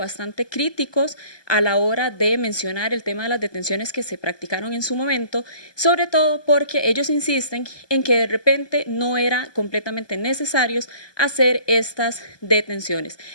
críticos a la hora de mencionar el tema de las detenciones que se practicaron en su momento, sobre todo porque ellos insisten en que de repente no era completamente necesarios hacer estas detenciones.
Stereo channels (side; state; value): right; late; 1.2 ms